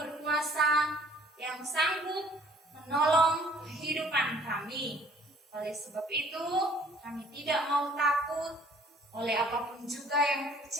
yang sanggup menolong kehidupan kami. Oleh sebab itu, kami tidak mau takut oleh apapun juga yang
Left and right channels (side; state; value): both; normal; correlation 0.56